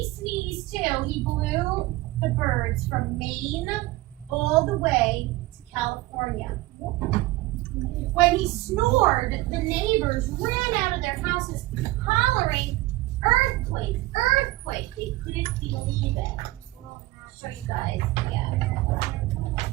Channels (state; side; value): quieter; left; 19.1 dB